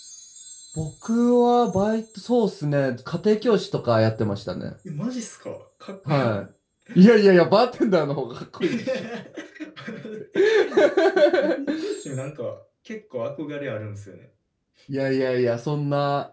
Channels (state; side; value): identical; both; correlation 1.00